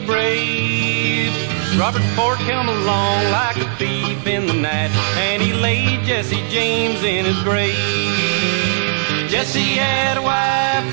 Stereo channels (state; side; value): silent; left; digital silence